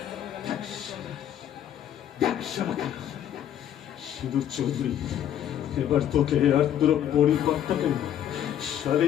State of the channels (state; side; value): quieter; right; 10.5 dB